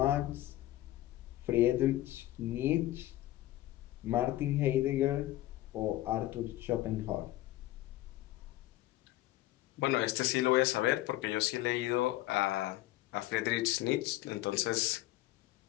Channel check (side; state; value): right; quieter; 15.7 dB